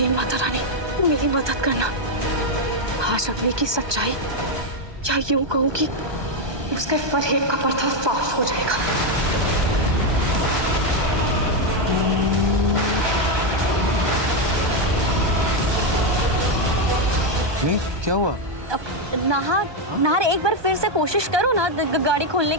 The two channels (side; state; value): left; late; 1.2 ms